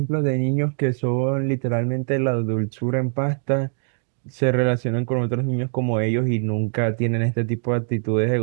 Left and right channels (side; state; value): left; silent; 64 dB below the other